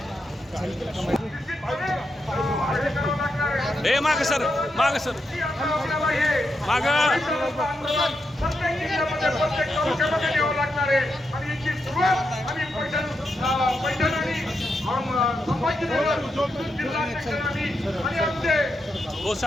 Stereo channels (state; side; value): normal; both; correlation 0.84